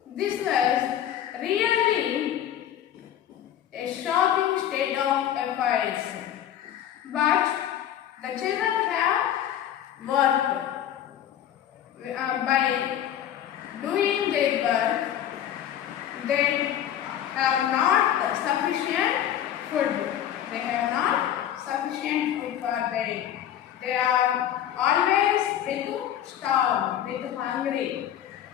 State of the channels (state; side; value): quieter; right; 10.8 dB